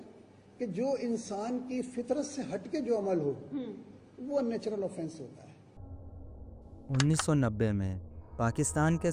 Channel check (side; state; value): both; identical; correlation 1.00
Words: कि जो इंसान की फितरत से हटके जो अमल हो वो अननेचुरल ऑफेंस होता है। 1990 में पाकिस्तान के